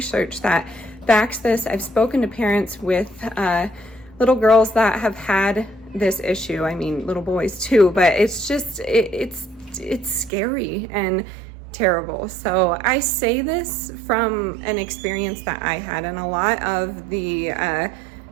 that backs this. I've spoken to parents with little girls that have had this issue. I mean, little boys too, but it's just, it's scary and terrible. So I say this from an experience that I had, and a lot of the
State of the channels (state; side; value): drops out; left; at 10.3 s